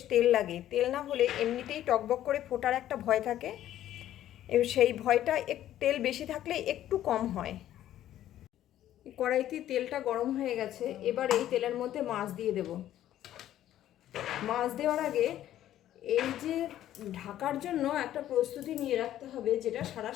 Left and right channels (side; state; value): right; quieter; 12.4 dB